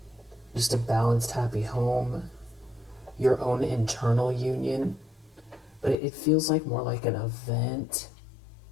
Just a balanced, happy home. Your own internal union. But it feels like more like an event.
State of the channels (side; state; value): right; drops out; at 6.0 s